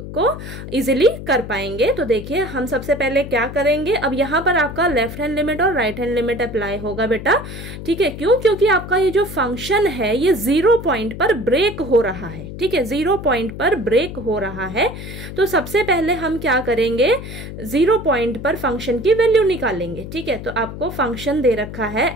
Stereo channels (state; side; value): noise; left; hum, 10 dB below the sound